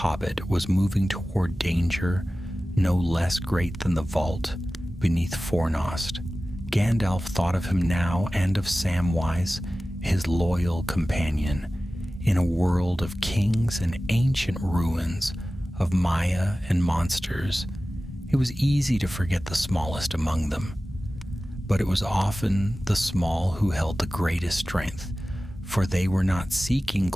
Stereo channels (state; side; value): normal; both; correlation 0.96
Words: was moving toward danger no less great than the vault beneath Fornost. Gandalf thought of him now and of Samwise, his loyal companion, in a world of kings and ancient ruins, of Maya and monsters. It was easy to forget the smallest among them, but it was often the small who held the greatest strength, for they were not seeking